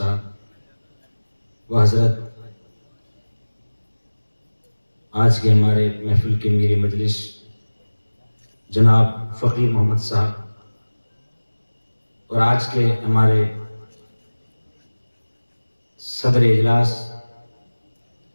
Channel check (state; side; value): inverted; both; correlation -1.00